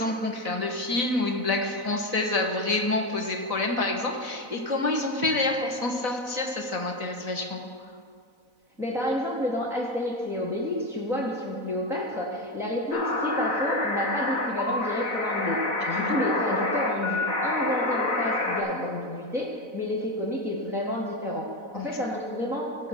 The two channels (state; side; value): late; left; 4.0 ms